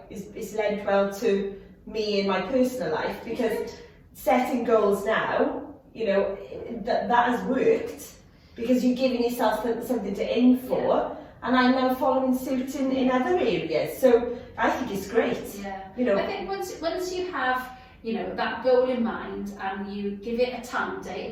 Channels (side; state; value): both; identical; correlation 1.00